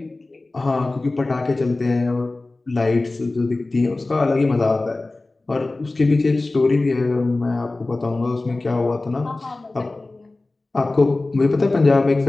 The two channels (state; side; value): quieter; right; 3.1 dB